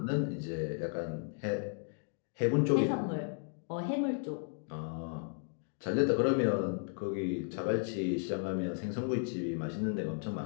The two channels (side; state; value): right; silent; 55 dB below the other